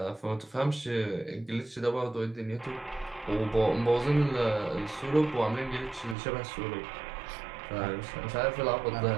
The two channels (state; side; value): drops out; left; at 6.2 s